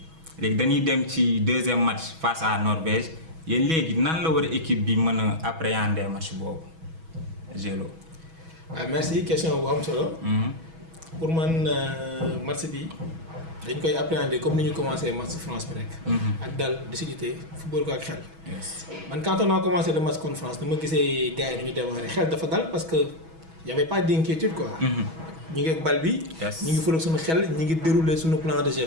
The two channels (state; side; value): late; left; 6.2 ms